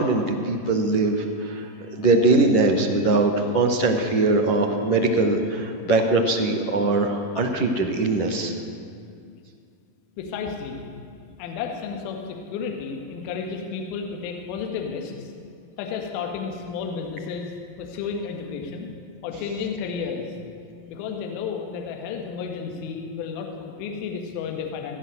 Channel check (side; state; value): right; late; 11 ms